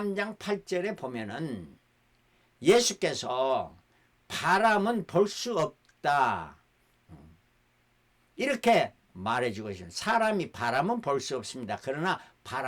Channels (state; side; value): identical; both; correlation 1.00